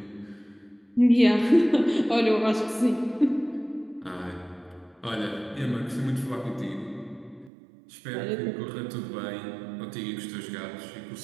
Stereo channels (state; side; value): drops out; left; at 7.5 s